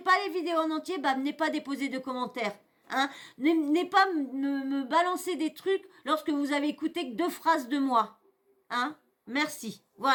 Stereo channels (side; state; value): both; identical; correlation 1.00